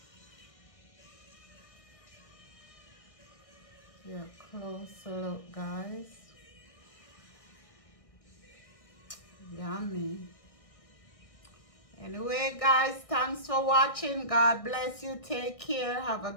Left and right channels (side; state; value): right; late; 1.6 ms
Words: Here, closer look guys. Yummy. Anyway guys, thanks for watching. God bless you. Take care. Have a